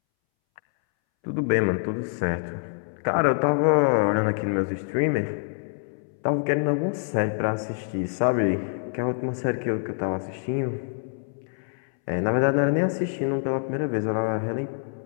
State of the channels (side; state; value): right; silent; 61 dB below the other